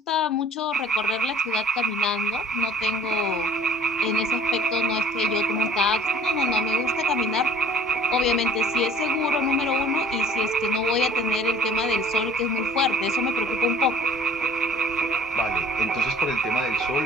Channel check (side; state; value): both; normal; correlation 0.52